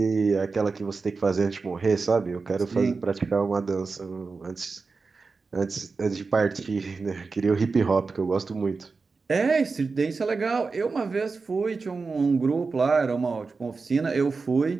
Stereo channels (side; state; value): left; quieter; 4.4 dB